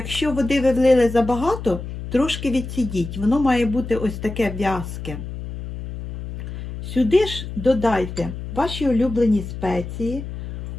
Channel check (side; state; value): left; noise; hum, 9 dB below the sound